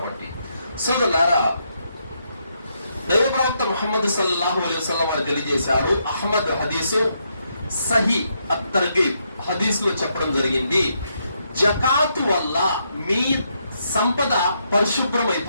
సోదరులారా, దైవ ప్రవక్త ముహమ్మద్ సల్లల్లాహు అలైహి వసల్లం వారు తెలియజేశారు. అహ్మద్ హదీసు సహీ అతర్గీబ్ హదీసులో చెప్పడం జరిగింది, జకాతు వల్ల మీ సంపద పరిశుభ్రం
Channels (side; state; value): both; inverted; correlation -0.78